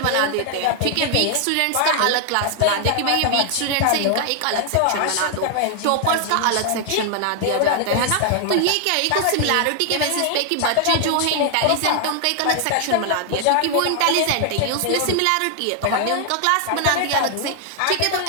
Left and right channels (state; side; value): different; both; correlation 0.00